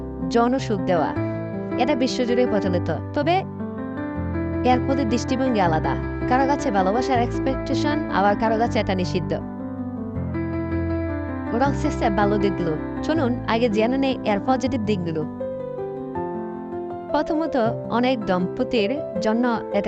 যৌন সুখ দেওয়া। এটা বিশ্বজুড়ে প্রচলিত, তবে এর প্রতি দৃষ্টিভঙ্গি আলাদা। কারো কাছে ভালোবাসার এক্সপেকটেশন, আবার কারো কাছে এটা নিষিদ্ধ। ওরাল সেক্সের ভালো দিকগুলো চলুন আগে জেনে নেই এর পজিটিভ দিকগুলো। প্রথমত, অনেক দম্পতির জন্য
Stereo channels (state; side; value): identical; both; correlation 1.00